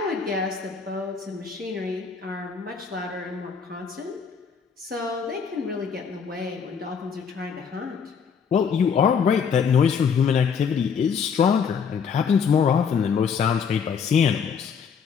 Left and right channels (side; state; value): right; quieter; 6.5 dB